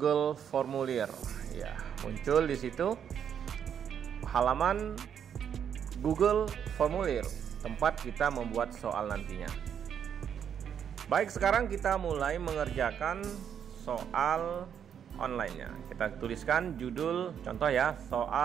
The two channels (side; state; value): left; quieter; 8.3 dB